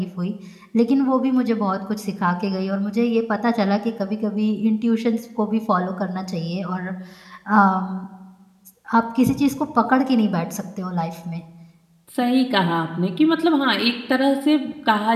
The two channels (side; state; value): both; identical; correlation 1.00